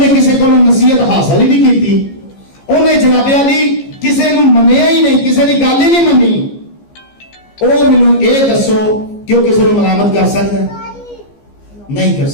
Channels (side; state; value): right; late; 15 ms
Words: किसी को नसीहत हासिल ही नहीं की, उन्हें जनाबे अली ਕਿਸੇ ਨੂੰ ਮੰਨਿਆ ਹੀ ਨਹੀਂ, ਕਿਸੇ ਦੀ ਗੱਲ ਹੀ ਨਹੀਂ ਮੰਨੀ, ਉਹ ਮੈਨੂੰ ਇਹ ਦੱਸੋ ਕਿ ਉਹ ਕਿਸੇ ਨੂੰ ਮਲਾਮਤ ਕਰ ਸਕਦਾ? ਨਹੀਂ ਕਰ